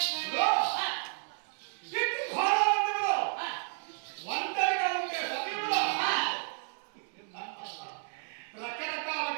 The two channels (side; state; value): left; silent; 56 dB below the other